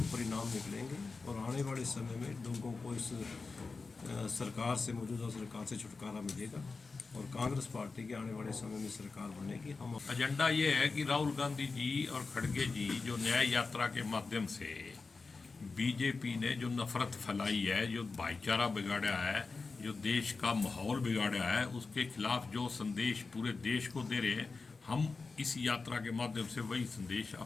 परिणाम निकलेंगे और आने वाले समय में लोगों को इस सरकार से, मौजूदा सरकार से छुटकारा मिलेगा और कांग्रेस पार्टी के आने वाले समय में सरकार बनेगी। हम एजेंडा ये है कि राहुल गांधी जी और खड़गे जी जो न्याय यात्रा के माध्यम से बीजेपी ने जो नफरत फैलाई है, जो भाईचारा बिगाड़ा है, जो देश का माहौल बिगाड़ा है, उसके खिलाफ जो संदेश पूरे देश को दे रहे हैं, हम इस यात्रा के माध्यम से वही संदेश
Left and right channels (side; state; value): right; quieter; 4.2 dB